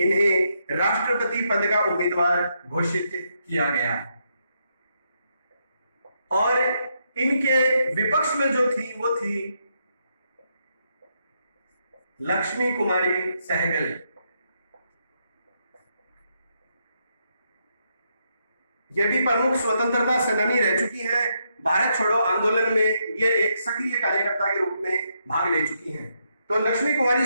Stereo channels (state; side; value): inverted; both; correlation -0.79